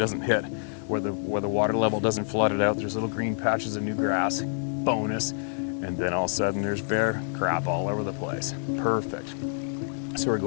hit, where the water level doesn't flood it out. There's little green patches of new grass, bonus. And then all of a sudden there's bear crap all over the place. Perfect. So we're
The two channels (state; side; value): silent; right; digital silence